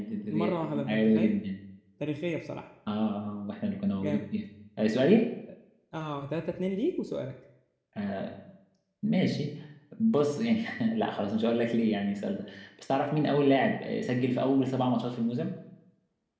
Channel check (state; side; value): identical; both; correlation 1.00